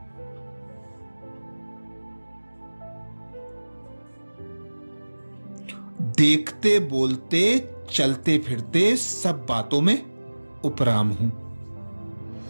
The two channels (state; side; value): inverted; both; correlation -1.00